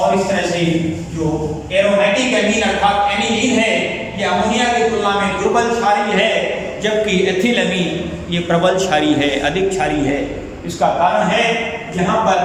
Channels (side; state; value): both; identical; correlation 1.00